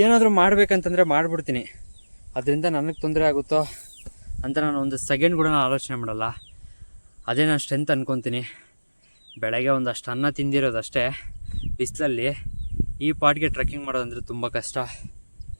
ಏನಾದರೂ ಮಾಡಬೇಕಂತಂದರೆ ಮಾಡಿಬಿಡ್ತೀನಿ. ಅದರಿಂದ ನನಗೆ ತೊಂದರೆ ಆಗುತ್ತೋ ಅಂತ ನಾನು ಒಂದು ಸೆಕೆಂಡ್ ಕೂಡ ನಾನು ಆಲೋಚನೆ ಮಾಡಲ್ಲ. ಅದೇ ನಾನು ಸ್ಟ್ರೆಂತ್ ಅಂದ್ಕೊತೀನಿ. ಬೆಳಗ್ಗೆ ಒಂದಷ್ಟು ಅನ್ನ ತಿಂದಿರೋದಷ್ಟೇ ಬಿಸಿಲಲ್ಲಿ. ಈ ಪಾಟ್ಗೆ ಟ್ರೆಕ್ಕಿಂಗ್ ಮಾಡೋದಂದರೆ ತುಂಬ ಕಷ್ಟ.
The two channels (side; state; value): both; inverted; correlation -1.00